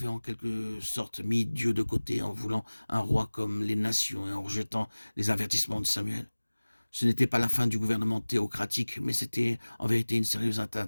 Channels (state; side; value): inverted; both; correlation -1.00